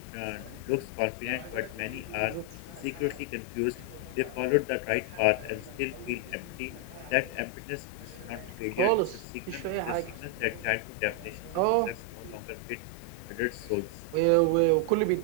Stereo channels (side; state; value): both; different; correlation 0.00